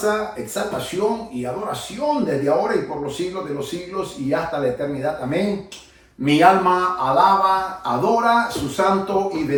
exaltación y adoración desde ahora y por los siglos de los siglos y hasta la eternidad. Amén. Mi alma alaba, adora su santo y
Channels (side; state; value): both; identical; correlation 1.00